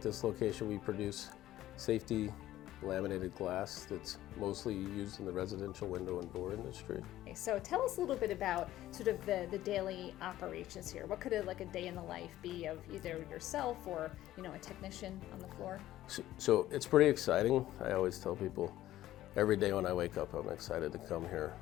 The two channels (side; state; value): right; quieter; 14.2 dB